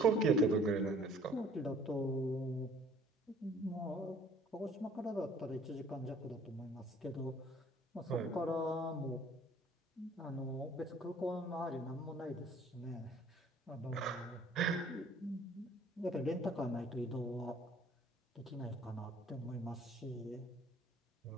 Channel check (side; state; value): both; normal; correlation 0.55